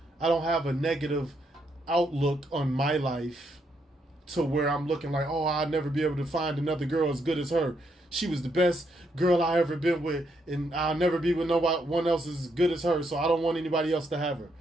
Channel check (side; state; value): both; normal; correlation 0.77